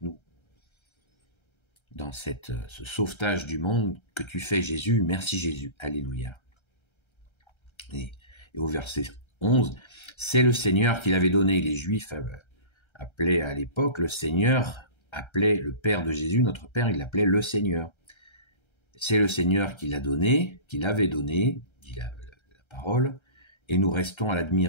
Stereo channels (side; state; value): right; late; 1.3 ms